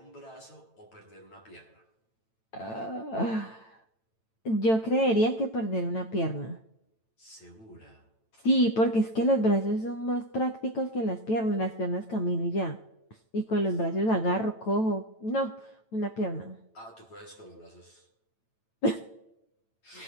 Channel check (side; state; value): right; late; 9.0 ms